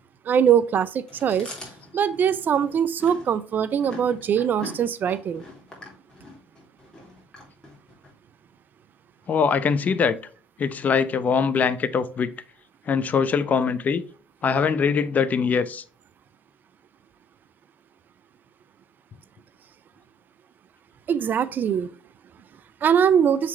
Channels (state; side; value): normal; both; correlation 0.60